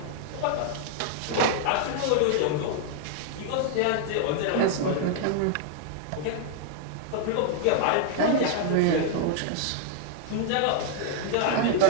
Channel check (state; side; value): different; both; correlation 0.00